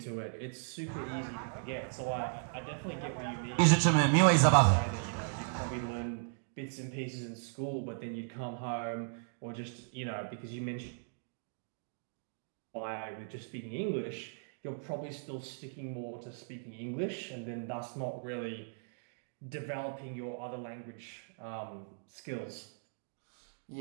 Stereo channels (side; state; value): left; silent; digital silence